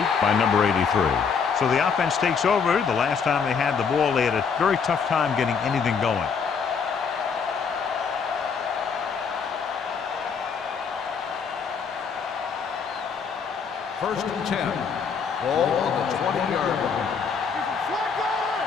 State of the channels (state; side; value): quieter; right; 6.0 dB